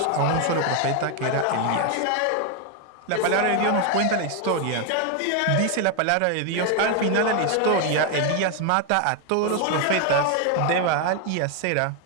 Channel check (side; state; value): both; different; correlation 0.01